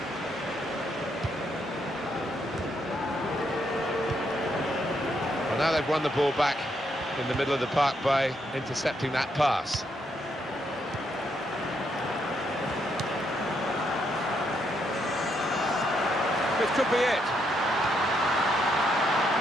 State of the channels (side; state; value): both; normal; correlation 0.76